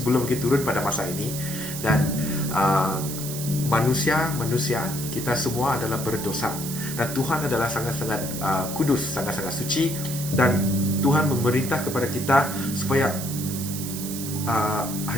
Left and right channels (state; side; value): noise; right; hiss, 7 dB below the sound